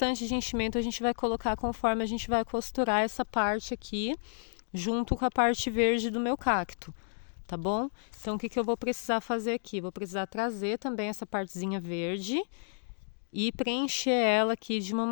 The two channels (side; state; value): right; silent; digital silence